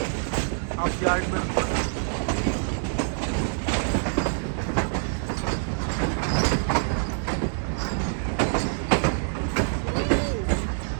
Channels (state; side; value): silent; left; digital silence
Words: अब यार्ड में।